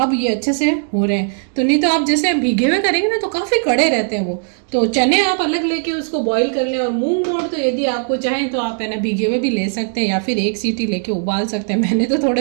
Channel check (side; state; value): left; silent; 61 dB below the other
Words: ये अच्छे से हो रहे हैं। तो नहीं तो आप जैसे भीगे हुए करेंगे ना तो काफ़ी कड़े रहते हैं वो। तो चने आप अलग लेके उसको बॉईल कर लें, और मूंग मोट तो यदि आपको चाहें तो आप है ना भीगे हुए भी ले सकते हैं या फिर 1 सीटी लेके उबाल सकते हैं। मैंने तो